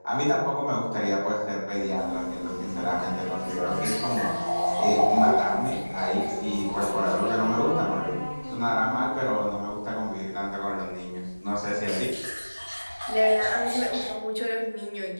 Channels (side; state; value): both; inverted; correlation -1.00